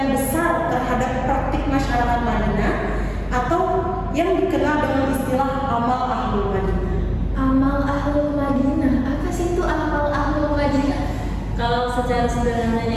besar terhadap praktik masyarakat Madinah atau yang dikenal dengan istilah amal Ahlul Madinah. Amal Ahlul Madinah, apa sih itu amal Ahlul Madinah? Kalau secara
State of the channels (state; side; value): identical; both; correlation 1.00